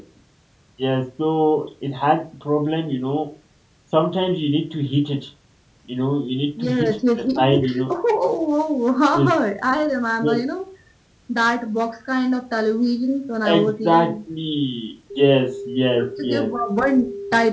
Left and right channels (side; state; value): both; identical; correlation 1.00